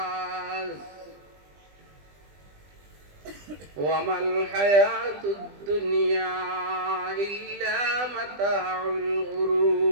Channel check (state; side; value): late; left; 20 ms